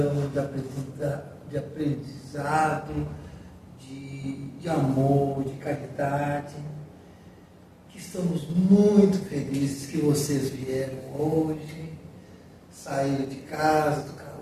de aprendizado, de amor, de caridade. Que estamos muito felizes que vocês vieram hoje, saíram de casa, do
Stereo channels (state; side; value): identical; both; correlation 1.00